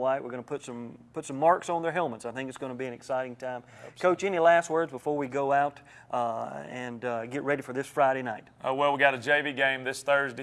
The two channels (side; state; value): both; identical; correlation 1.00